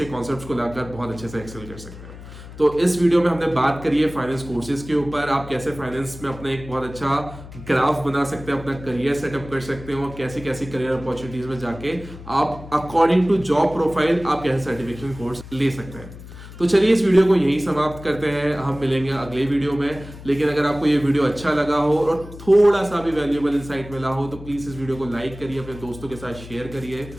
कॉन्सेप्ट्स को लाकर बहुत अच्छे से एक्सेल कर सकते हैं। तो इस वीडियो में हमने बात करी है फाइनेंस कोर्सेज के ऊपर, आप कैसे फाइनेंस में अपना एक बहुत अच्छा ग्राफ बना सकते हैं, अपना करियर सेटअप कर सकते हैं और कैसी कैसी करियर अपॉर्चुनिटीज में जाके आप अकॉर्डिंग टू जॉब प्रोफाइल आप कैसे सर्टिफिकेशन कोर्स ले सकते हैं। तो चलिए इस वीडियो को यहीं समाप्त करते हैं, हम मिलेंगे अगले वीडियो में। लेकिन अगर आपको ये वीडियो अच्छा लगा हो और थोड़ा सा भी वैल्यूएबल इंसाइट मिला हो तो प्लीज इस वीडियो को लाइक करिए, अपने दोस्तों के साथ शेयर करिए।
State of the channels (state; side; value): noise; left; hum, 15 dB below the sound